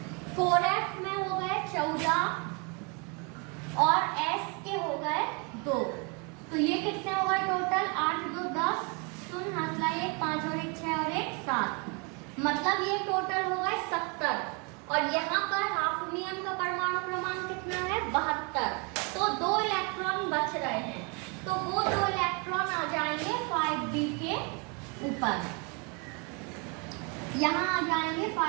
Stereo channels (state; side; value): quieter; left; 32.7 dB